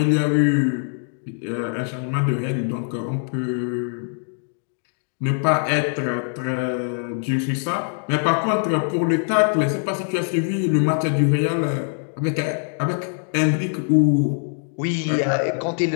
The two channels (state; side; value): silent; right; 64 dB below the other